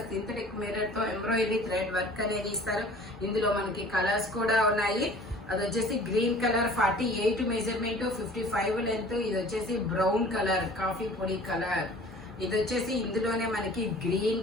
సింథటిక్ మిర్రర్ తో ఎంబ్రాయిడరీ థ్రెడ్ వర్క్ అనేది ఇస్తారు. ఇందులో మనకి కలర్స్ కూడా ఉన్నాయి. అది వచ్చేసి గ్రీన్ కలర్ 48 మెజర్మెంట్ 55 లెంత్. ఇది వచ్చేసి బ్రౌన్ కలర్ కాఫీ పొడి కలర్. ఇది వచ్చేసి ఇందులోనే మనకి గ్రీన్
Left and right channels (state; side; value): normal; both; correlation 0.47